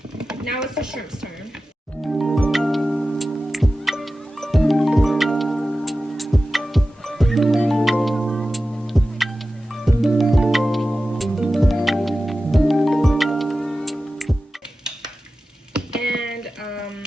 Now it's the shrimp's turn.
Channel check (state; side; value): normal; both; correlation 0.94